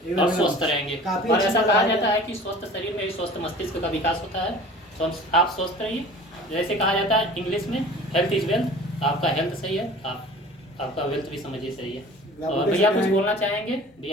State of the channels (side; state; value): both; normal; correlation 0.43